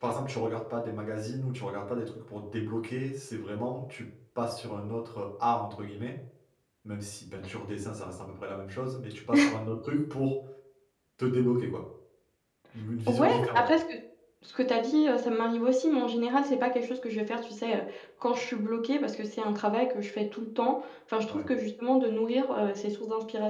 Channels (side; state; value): both; identical; correlation 1.00